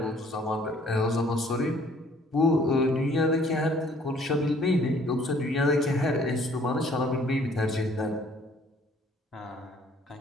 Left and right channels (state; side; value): normal; both; correlation 0.59